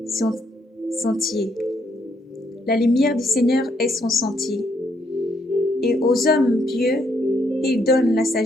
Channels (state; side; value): normal; both; correlation 0.73